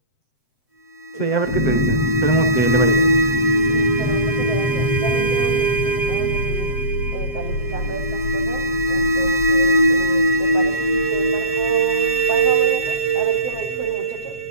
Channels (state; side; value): late; right; 7.8 ms